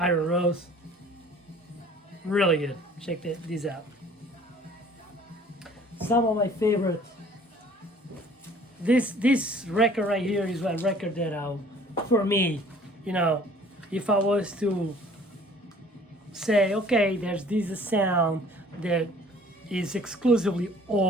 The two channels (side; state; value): both; normal; correlation 0.52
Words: Rose, really good. Check these out. Some of my favorite. This record right here is a record that for me, you know, if I was to say, okay, there's this sound that is exclusively